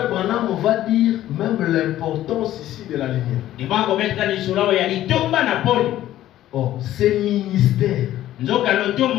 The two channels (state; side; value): quieter; right; 13.4 dB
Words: Branham, on va dire même l'importance ici de la lumière. Oh, ces ministères